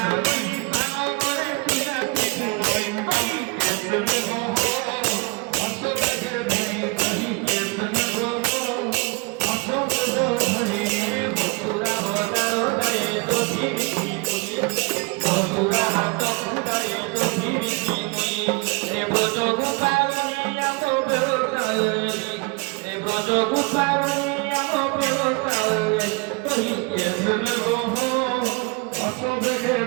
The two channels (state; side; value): quieter; left; 28.7 dB